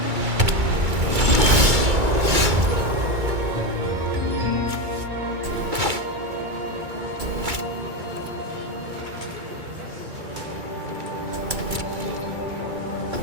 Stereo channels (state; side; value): late; left; 2.2 ms